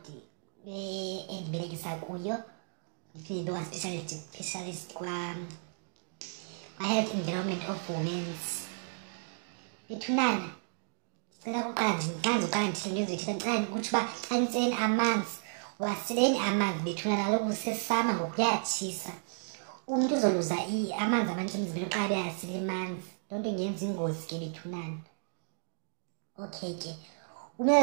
endibelekisa kuyo, ndiphinde specialist kwa-Health Environment of Women's. Bethunana, ndicela kuqala uqala ndithile into ezithile, ndicela ukuthi uba xa nitseni amanzi waseleni amanzi bethunana, kaloku kusesama ngoku kuyatshisa. Umntu uzoluza amanzi amanintsi emzimbeni xa beyasile amanzi, loo nto ingenza ingozi ke bethunana. Okay ke,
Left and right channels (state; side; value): silent; left; digital silence